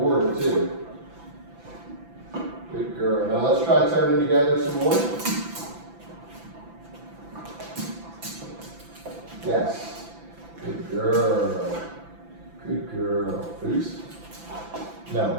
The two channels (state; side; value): late; left; 5.9 ms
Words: her too. Good girl. Now let's try turning together some more. Yes. Good girl. Good girl. Boost.